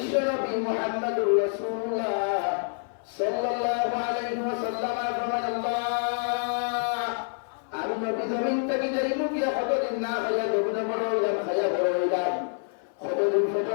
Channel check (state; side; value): silent; right; 56 dB below the other